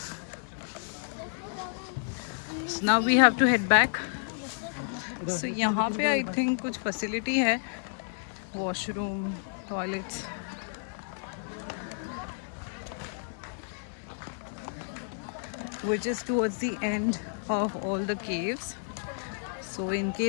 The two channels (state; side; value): silent; right; digital silence